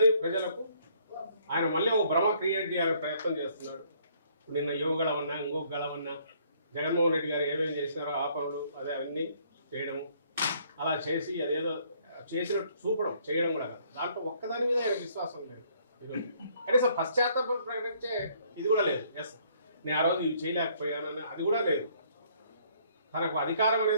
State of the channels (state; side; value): inverted; both; correlation -0.63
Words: ప్రజలకు ఆయన మళ్ళీ ఒక భ్రమ క్రియేట్ చేయాలని ప్రయత్నం చేస్తున్నాడు. నిన్న యువగళమన్నా ఇంకొక గళమన్నా జగన్మోహన్ రెడ్డి గారు ఏమేమి చేసినారో ఆ పనులు అదే అన్నీ చేయడము, అలా చేసి అదేదో చేసినట్టు చూపడం చేయడం కూడా కాదు. దాంట్లో ఒక్కదాని మీద ఆయన విశ్వాసం లేదు. కనీసం పశ్చాత్తాపం ప్రకటించే ఇది కూడా లేదు. ఎస్ నేను ఆ రోజు ఇవి చేయలేకపోయానని అది కూడా లేదు. తనకు అధికారం